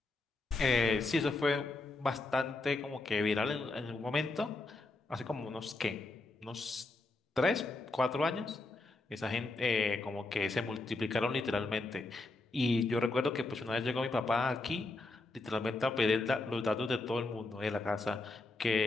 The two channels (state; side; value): quieter; right; 3.1 dB